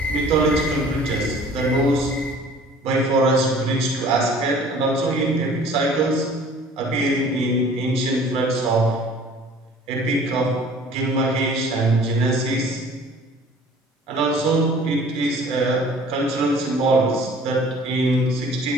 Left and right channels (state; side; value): normal; both; correlation 0.50